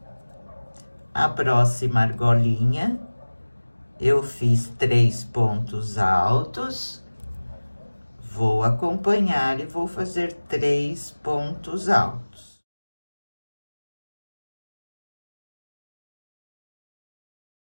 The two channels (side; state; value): both; inverted; correlation -1.00